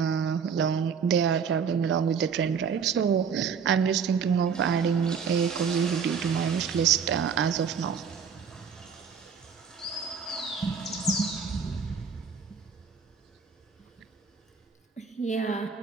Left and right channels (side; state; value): left; quieter; 6.4 dB